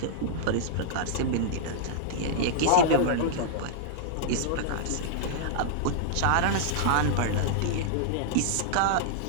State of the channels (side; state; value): both; different; correlation -0.01